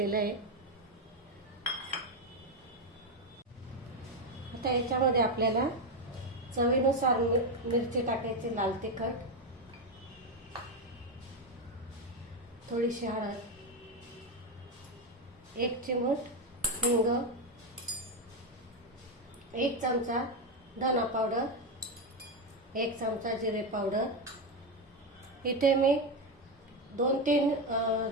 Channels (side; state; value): both; normal; correlation 0.10